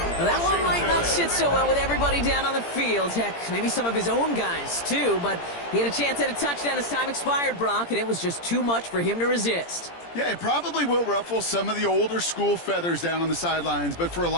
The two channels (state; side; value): late; right; 17 ms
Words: Well, that one might not sit so well with everybody down on the field. Heck, maybe some of his own guys, too. But he had a chance at a touchdown as time expired, Brock, and it was just too much for him to resist. Yeah, it probably will ruffle some of the older school feathers down on the sidelines. But for a